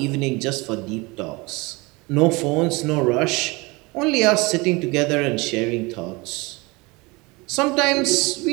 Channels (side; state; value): left; quieter; 25.1 dB